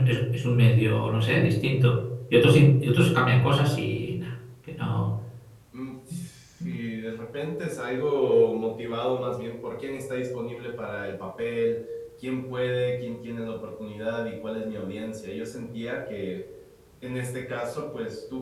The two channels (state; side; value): identical; both; correlation 1.00